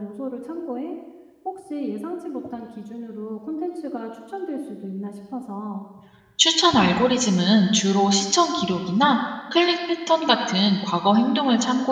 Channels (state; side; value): identical; both; correlation 1.00